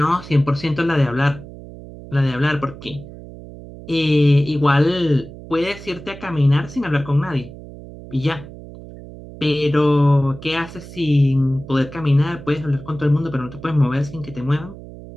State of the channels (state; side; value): noise; right; hum, 15 dB below the sound